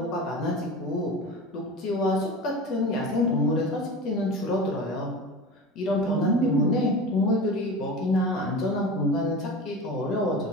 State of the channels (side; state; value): both; normal; correlation 0.31